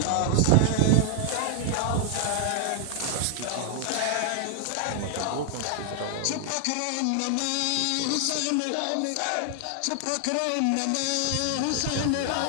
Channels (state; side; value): different; both; correlation 0.00